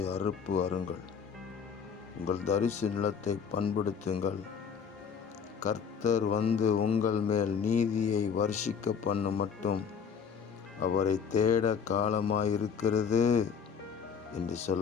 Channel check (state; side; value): quieter; right; 6.6 dB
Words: அறுப்பு அருங்கள். உங்கள் தரிசு நிலத்தை பண்படுத்துங்கள். கர்த்தர் வந்து உங்கள் மேல் நீதியை வர்ஷிக்க பண்ணும் மட்டும் அவரை தேட காலமாயிருக்கிறது என்று